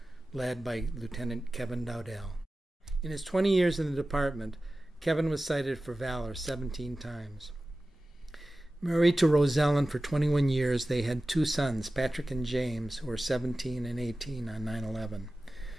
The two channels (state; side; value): normal; both; correlation 0.96